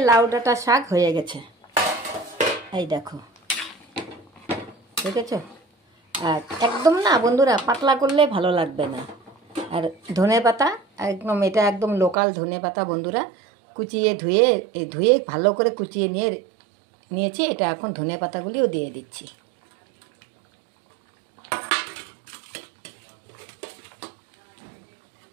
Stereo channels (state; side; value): drops out; left; at 12.2 s